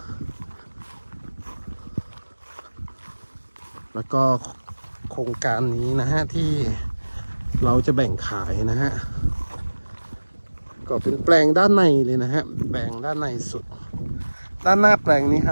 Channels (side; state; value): both; inverted; correlation -1.00